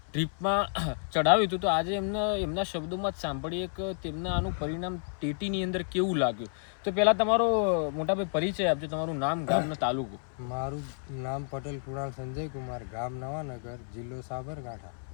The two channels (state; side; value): silent; right; 57 dB below the other